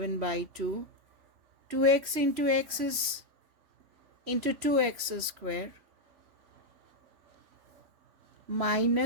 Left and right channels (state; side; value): late; left; 3.1 ms